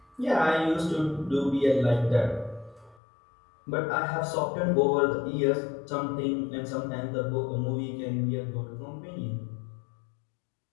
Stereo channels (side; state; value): right; drops out; at 3.0 s